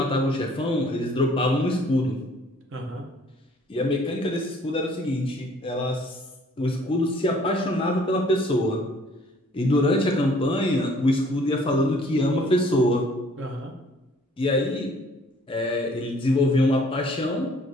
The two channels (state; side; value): normal; both; correlation 0.58